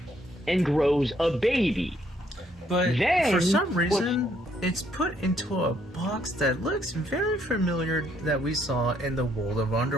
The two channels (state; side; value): normal; both; correlation 0.69